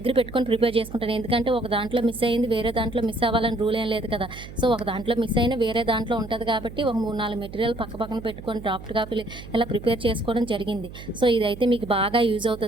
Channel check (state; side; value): noise; right; hum, 14 dB below the sound